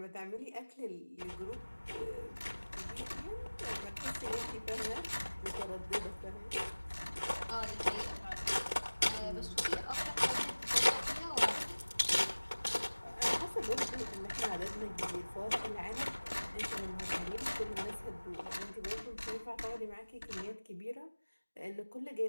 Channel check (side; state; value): both; inverted; correlation -1.00